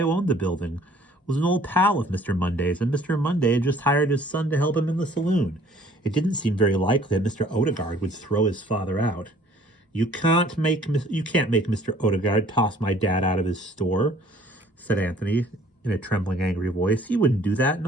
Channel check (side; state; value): both; normal; correlation 0.56